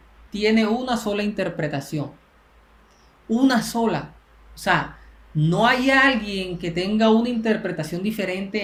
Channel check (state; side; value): identical; both; correlation 1.00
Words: tiene una sola interpretación. Una sola. O sea, no hay alguien que tenga una interpretación